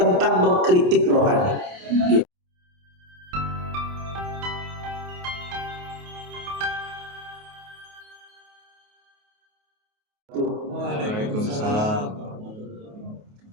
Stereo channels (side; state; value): left; late; 28 ms